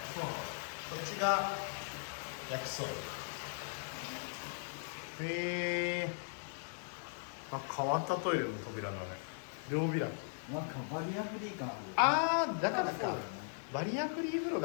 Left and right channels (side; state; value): right; silent; 52 dB below the other